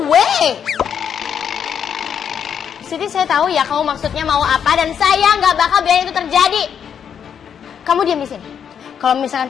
way! Siti, saya tahu ya kamu maksudnya mau apa dan saya nggak bakal biarin itu terjadi. Kamu diam di sini. Kalau misalkan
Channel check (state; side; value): quieter; right; 7.9 dB